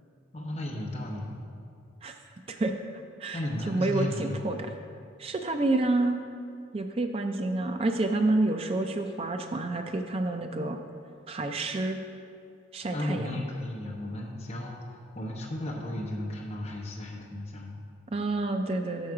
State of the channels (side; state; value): both; normal; correlation 0.74